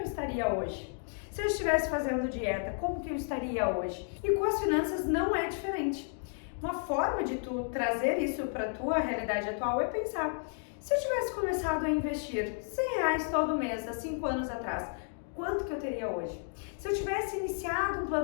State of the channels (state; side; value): silent; right; 56 dB below the other